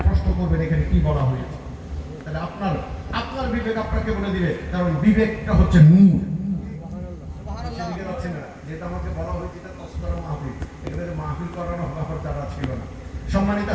প্রশ্ন করবেন এখানে কি বলা হয়েছে। তাহলে আপনার বিবেক আপনাকে বলে দিবে, কারণ বিবেকটা হচ্ছে নূর। যেটা আমাকে বলা হয়েছে তসকরা মাহফিল, এখানে মাহফিল করানো ব্যাপার তারা ছিল না। সম্মানিত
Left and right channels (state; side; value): identical; both; correlation 1.00